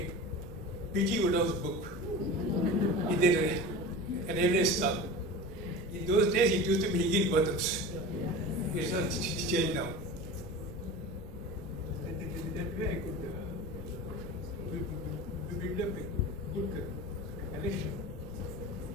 P.G. Woodhouse book in the railway stop. In those days, it used to be Higginbotham's. It's not changed now. That way I could build up a good collection.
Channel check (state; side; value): noise; right; rumble, 15 dB below the sound